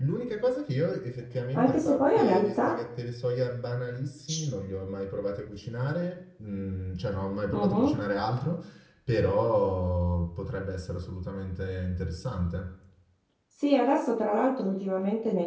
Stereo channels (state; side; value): identical; both; correlation 1.00